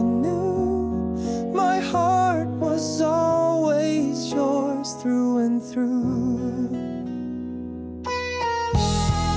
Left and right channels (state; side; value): identical; both; correlation 1.00